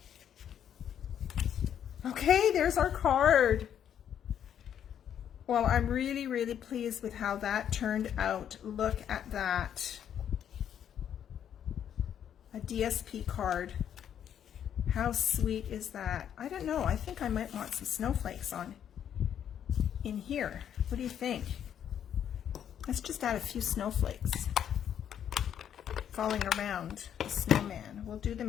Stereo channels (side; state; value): right; quieter; 9.4 dB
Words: Okay, there's our card. Well, I'm really, really pleased with how that turned out. Look at that. A DSP card. How sweet is that? I don't know. I think I might want some snowflakes on in here. What do you think? Let's just add a few snowflakes falling around the snowman. We'll do